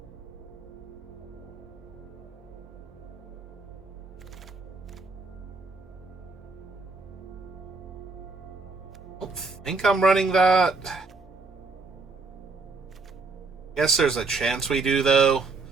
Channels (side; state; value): left; quieter; 3.9 dB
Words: I don't think I'm running that. Guess there's a chance we do, though.